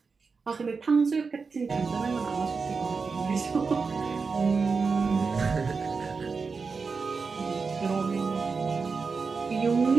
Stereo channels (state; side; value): quieter; left; 4.8 dB